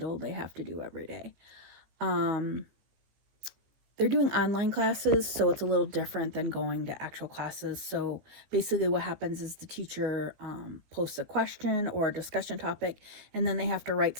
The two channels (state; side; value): late; left; 15 ms